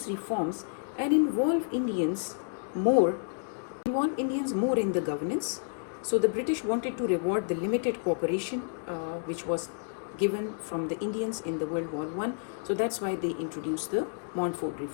reforms and involve Indians more in the governance. So the British wanted to reward the limited cooperation which was given from the Indians in the World War I. So that's why they introduced the Montfort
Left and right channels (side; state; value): right; silent; digital silence